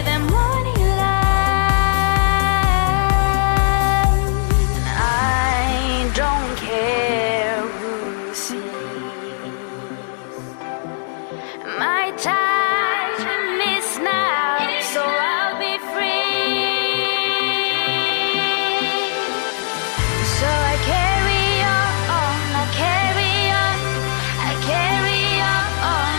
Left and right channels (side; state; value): right; silent; digital silence